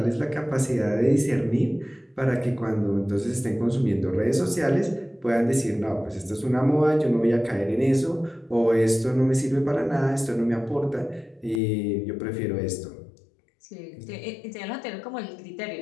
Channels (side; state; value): right; drops out; at 11.6 s